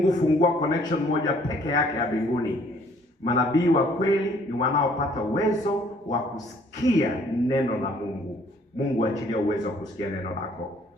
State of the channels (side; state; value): both; normal; correlation 0.60